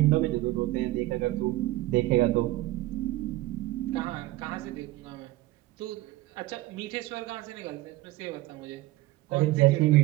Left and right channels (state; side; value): quieter; left; 17.8 dB